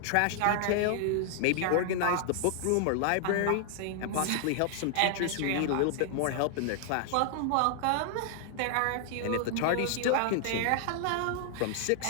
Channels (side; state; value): both; different; correlation 0.00